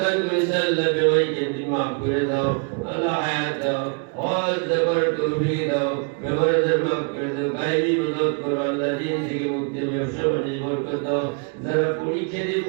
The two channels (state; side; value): quieter; left; 38.1 dB